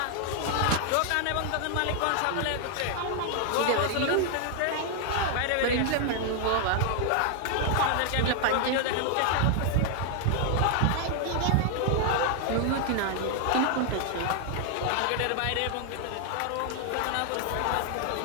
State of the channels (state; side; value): different; both; correlation 0.00